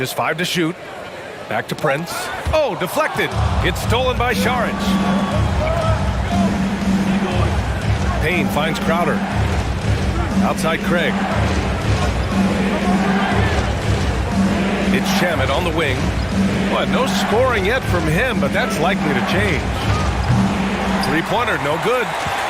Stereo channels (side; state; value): both; identical; correlation 1.00